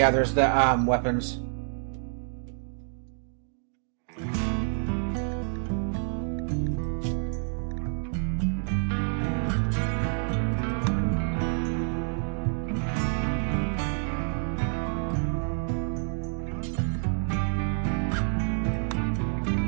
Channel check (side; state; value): left; silent; 59 dB below the other